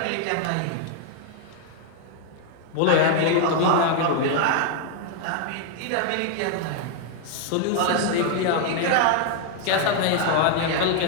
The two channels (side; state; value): both; different; correlation 0.00